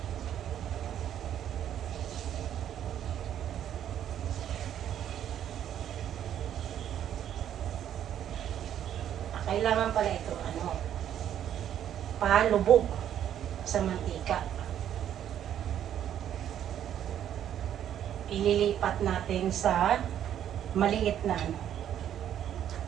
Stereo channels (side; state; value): left; quieter; 10.3 dB